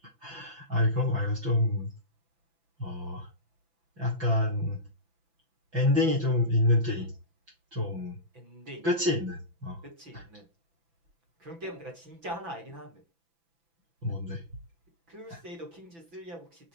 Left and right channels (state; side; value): late; left; 6.0 ms